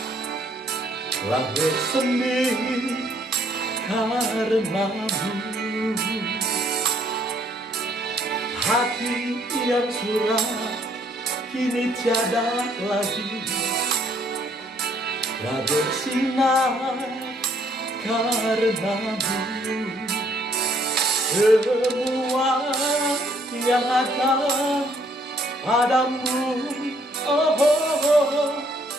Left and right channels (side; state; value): both; normal; correlation 0.66